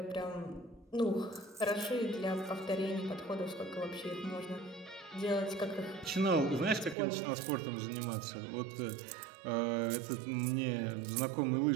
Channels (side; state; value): left; drops out; at 7.0 s